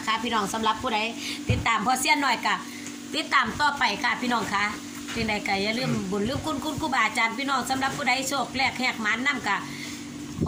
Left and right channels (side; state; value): both; identical; correlation 1.00